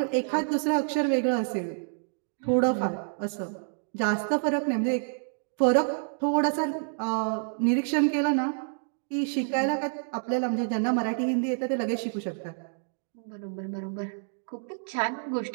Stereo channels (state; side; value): silent; left; digital silence